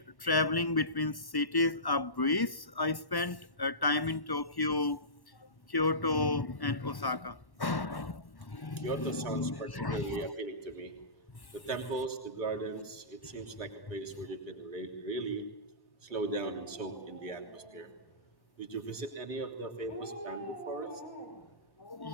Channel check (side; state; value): right; late; 1.1 ms